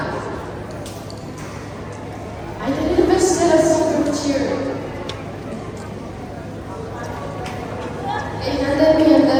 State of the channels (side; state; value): both; identical; correlation 1.00